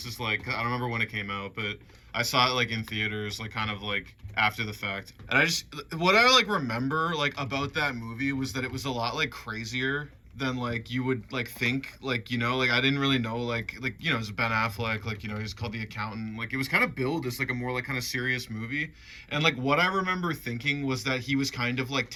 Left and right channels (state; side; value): identical; both; correlation 1.00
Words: is like I don't remember when it came out, but I saw it like in theaters, like kind of like after the fact. And I just what I like remember like about that movie was that it was a lot like crazier than like you would like think, like like I didn't really know it was Ben Affleck, like he's called The Accountant, like it was kind of billed as like a more like kind of serious movie. And like what I remember thinking was that he was kind of like